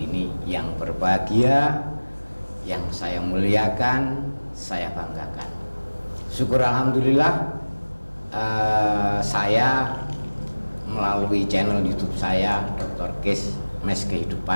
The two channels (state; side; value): inverted; both; correlation -1.00